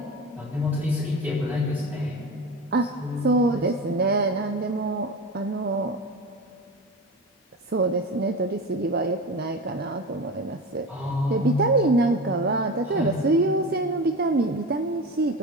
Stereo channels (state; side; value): normal; both; correlation 0.27